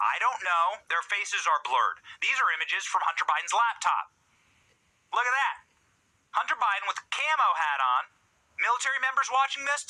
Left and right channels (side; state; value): both; identical; correlation 1.00